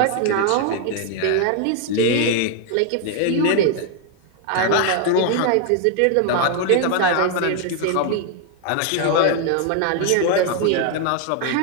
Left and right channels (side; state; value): both; different; correlation 0.00